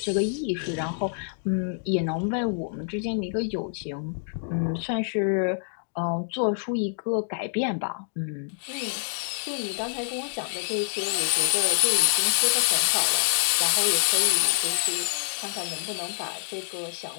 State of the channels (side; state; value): right; silent; digital silence